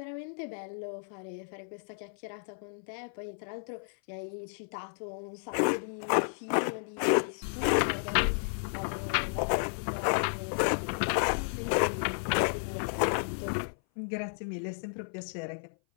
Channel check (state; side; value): silent; right; 56 dB below the other